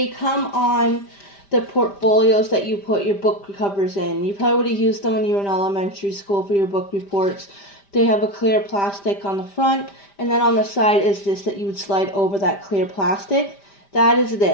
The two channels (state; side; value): late; right; 5.0 ms